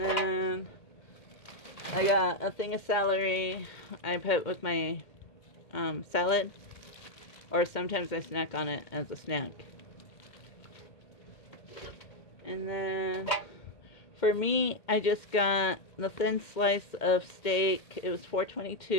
I got a thing of celery I put with my salad. Or sometimes I snack on it as a snack. And then for me, I just got the thin slice of steak. It was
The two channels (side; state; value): right; late; 1.8 ms